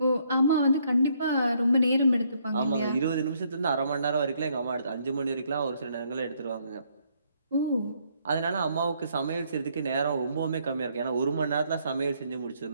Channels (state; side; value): inverted; both; correlation -0.70